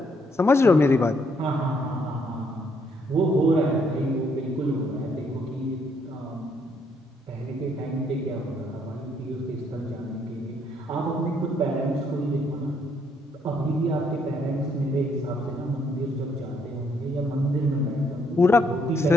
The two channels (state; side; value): normal; both; correlation 0.70